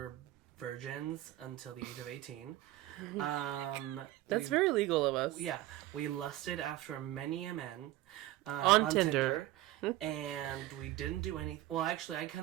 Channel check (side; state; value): left; quieter; 15.7 dB